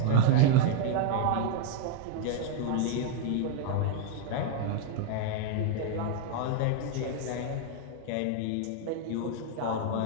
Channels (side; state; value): both; different; correlation 0.00